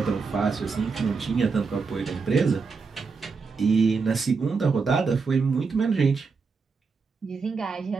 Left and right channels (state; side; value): quieter; left; 4.8 dB